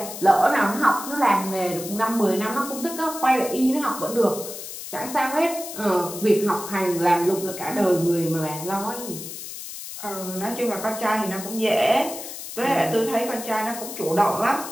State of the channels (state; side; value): noise; left; hiss, 10 dB below the sound